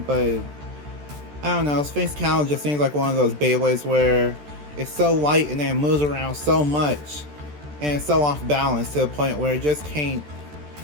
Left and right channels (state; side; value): late; left; 14 ms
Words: but I don't know, Sphinx Cowl just seems like one of those Beyblades where it's so light and then it moves around so much and it's so off balance to the point where it just can't,